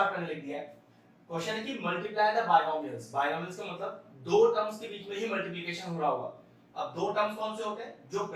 मैंने लिख दिया है। क्वेश्चन है कि मल्टीप्लाई द बायनोमियल्स। बायनोमियल्स का मतलब दो टर्म्स के बीच में ही मल्टीप्लिकेशन हो रहा होगा। अब दो टर्म्स कौन से होते हैं? जो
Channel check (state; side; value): identical; both; correlation 1.00